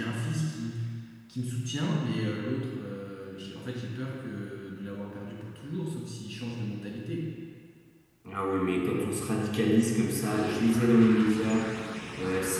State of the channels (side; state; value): both; identical; correlation 1.00